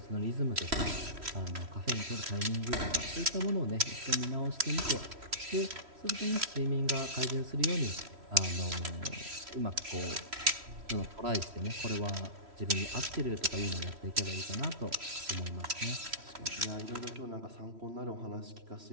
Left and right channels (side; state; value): left; late; 3.1 ms